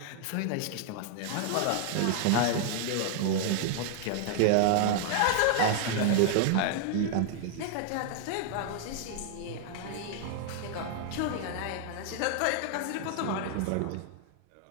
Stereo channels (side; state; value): both; different; correlation 0.00